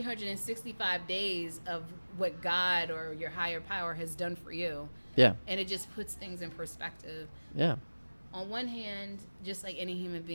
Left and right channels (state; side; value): inverted; both; correlation -1.00